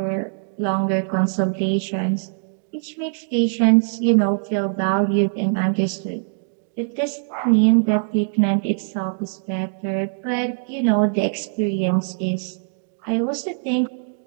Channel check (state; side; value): silent; left; digital silence